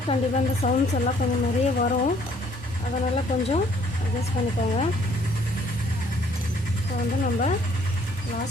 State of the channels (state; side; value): normal; both; correlation 0.62